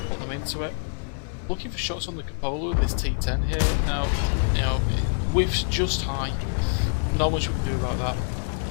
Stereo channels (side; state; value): right; silent; digital silence